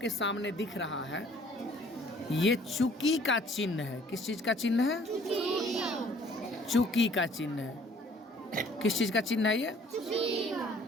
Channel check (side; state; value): both; normal; correlation 0.56